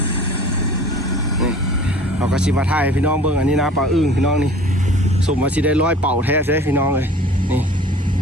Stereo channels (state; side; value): normal; both; correlation 0.46